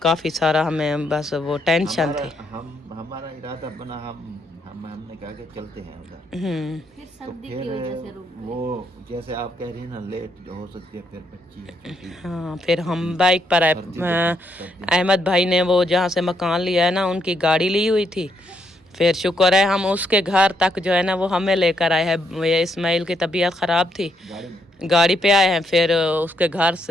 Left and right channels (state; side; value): normal; both; correlation 0.75